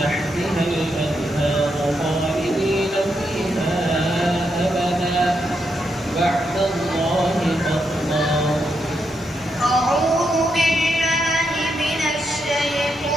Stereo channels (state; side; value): normal; both; correlation 0.81